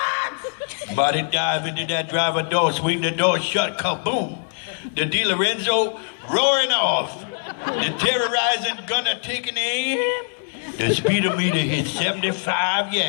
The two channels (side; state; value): right; silent; 59 dB below the other